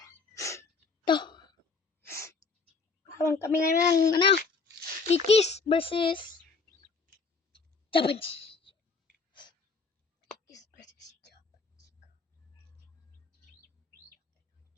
Ito. Habang kami ngayon ng Kikis versus Japanese. Kikis versus Japanese.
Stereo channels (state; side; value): quieter; right; 4.4 dB